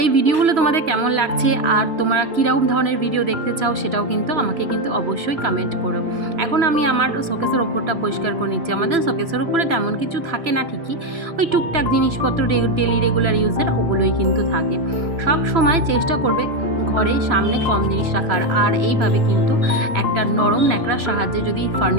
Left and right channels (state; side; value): late; left; 3.0 ms